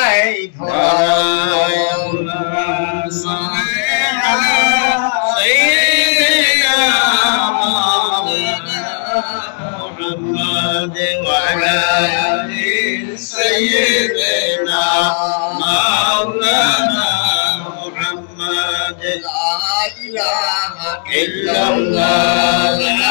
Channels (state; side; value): silent; right; digital silence